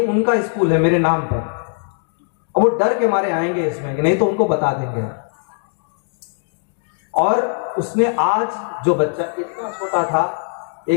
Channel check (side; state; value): right; silent; 62 dB below the other